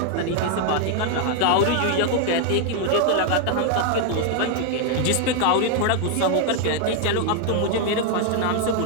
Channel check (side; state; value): both; different; correlation 0.00